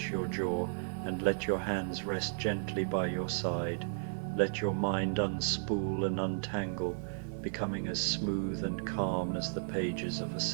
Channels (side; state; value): left; silent; digital silence